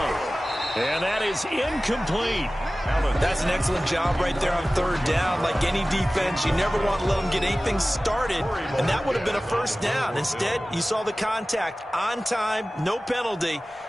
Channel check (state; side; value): normal; both; correlation 0.97